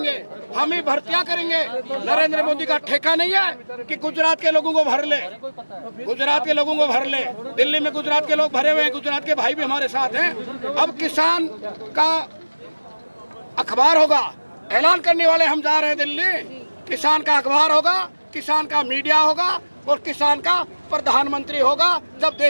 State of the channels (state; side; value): inverted; both; correlation -1.00